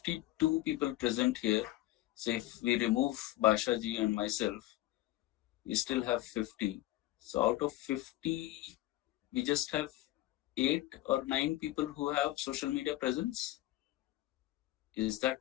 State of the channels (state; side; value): quieter; right; 16.4 dB